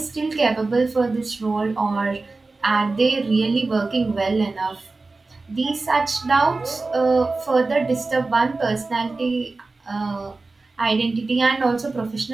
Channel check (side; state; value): left; quieter; 3.6 dB